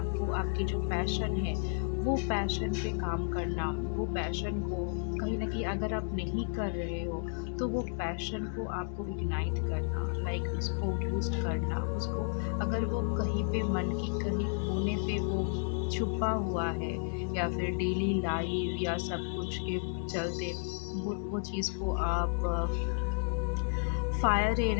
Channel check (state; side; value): silent; right; 56 dB below the other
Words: आपकी जो पैशन है वो पैशन पे काम करना, वो पैशन को कहीं ना कहीं अगर आप नहीं कर रहे हो तो वो पैशन को आपको इग्नाइट करना, लाइक उसको बूस्ट करना, उसको अगर वो कहीं पे मन की कहीं कोने पे वो छुपा हुआ है या फिर डेली लाइफ या सब कुछ के चलते वो चीज़ को आप फायर